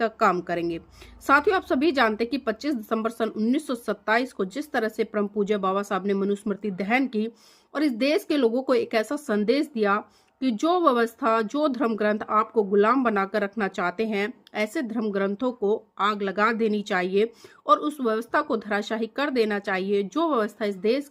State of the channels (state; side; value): identical; both; correlation 1.00